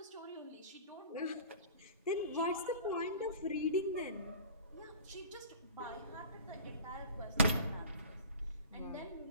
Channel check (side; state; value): both; inverted; correlation -0.41